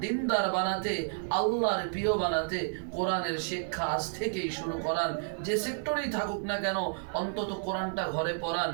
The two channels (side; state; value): left; silent; 57 dB below the other